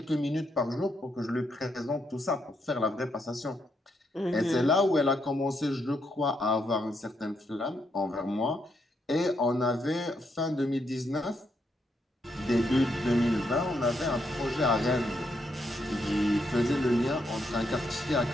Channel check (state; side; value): normal; both; correlation 0.78